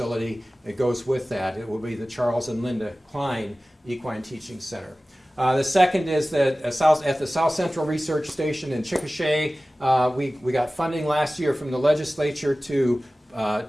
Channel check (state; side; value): normal; both; correlation 0.97